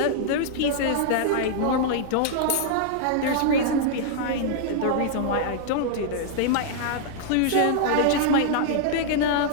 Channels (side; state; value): both; different; correlation -0.01